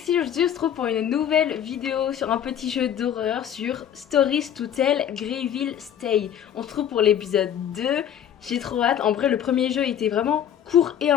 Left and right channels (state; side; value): quieter; right; 9.6 dB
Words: aujourd'hui on se retrouve pour une nouvelle vidéo sur un petit jeu d'horreur sur Stories to Tell Greyville Stay. On se retrouve pour l'épisode 2, j'ai trop hâte. En vrai le premier jeu était vraiment court et